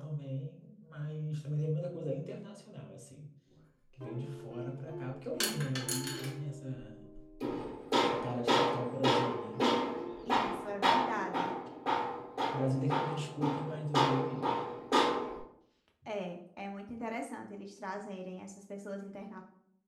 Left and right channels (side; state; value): both; identical; correlation 1.00